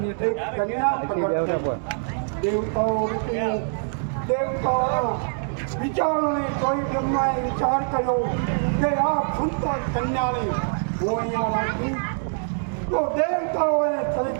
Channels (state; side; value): silent; left; digital silence